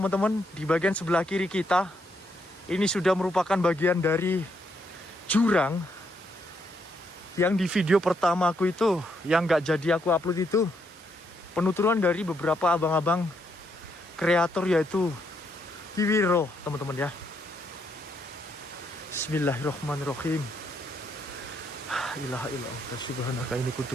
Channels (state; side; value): normal; both; correlation 0.76